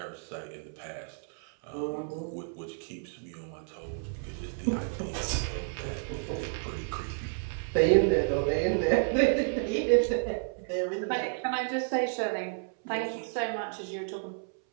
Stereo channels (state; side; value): silent; left; 57 dB below the other